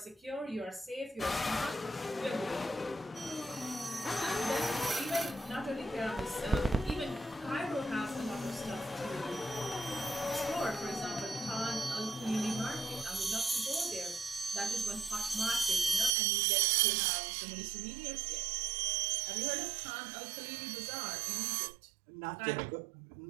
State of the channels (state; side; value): drops out; left; at 16.1 s